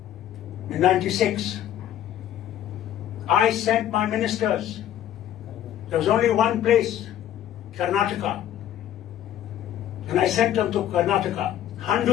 in '96. I sent my ministers. There was only one place, Karnataka. And I sent them to Karnataka,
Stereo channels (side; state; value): right; quieter; 11.4 dB